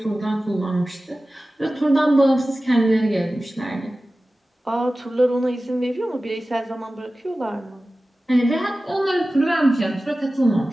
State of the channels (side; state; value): both; normal; correlation 0.96